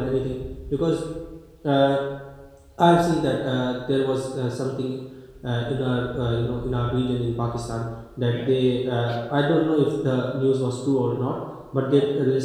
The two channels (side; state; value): both; identical; correlation 1.00